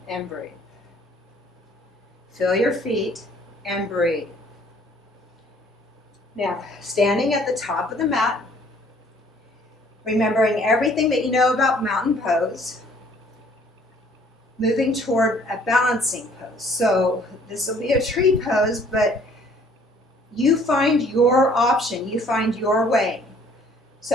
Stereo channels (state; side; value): normal; both; correlation 0.59